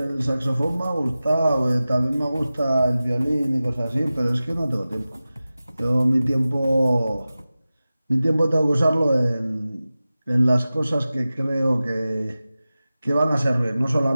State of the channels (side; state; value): both; inverted; correlation -0.96